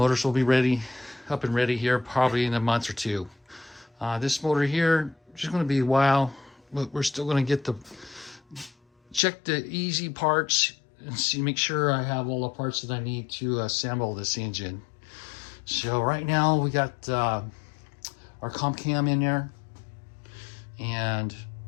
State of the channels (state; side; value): drops out; right; at 9.2 s